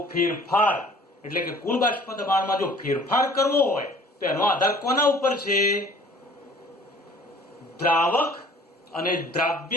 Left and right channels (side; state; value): both; normal; correlation 0.51